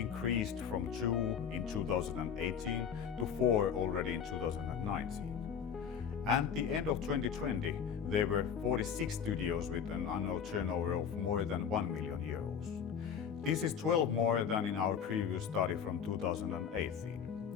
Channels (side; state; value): right; quieter; 7.5 dB